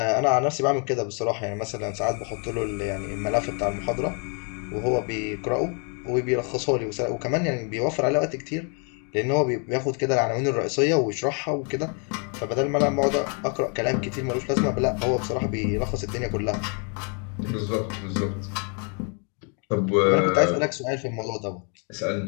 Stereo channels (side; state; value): right; quieter; 38.2 dB